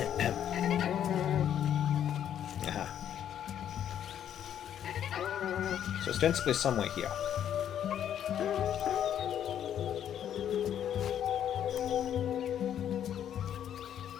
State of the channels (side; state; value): right; quieter; 9.9 dB